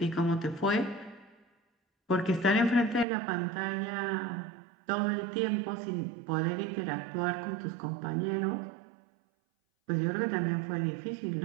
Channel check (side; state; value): left; drops out; at 3.1 s